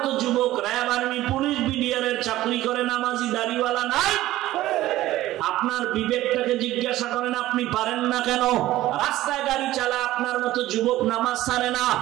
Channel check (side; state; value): left; quieter; 15.5 dB